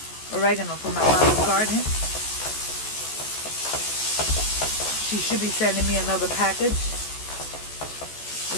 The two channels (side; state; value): right; late; 14 ms